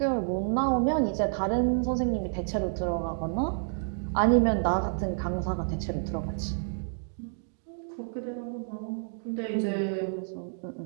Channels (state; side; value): silent; left; digital silence